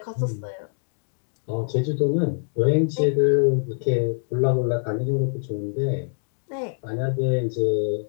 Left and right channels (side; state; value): right; silent; digital silence